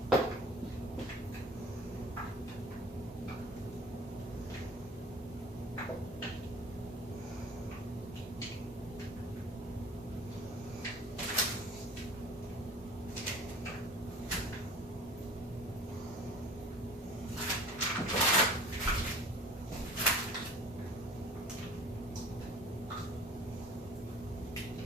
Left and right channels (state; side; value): normal; both; correlation 0.43